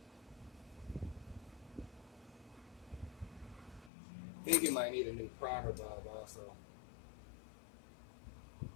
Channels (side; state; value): right; drops out; at 3.9 s